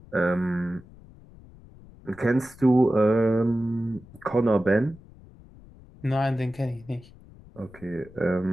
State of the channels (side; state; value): left; noise; rumble, 22 dB below the sound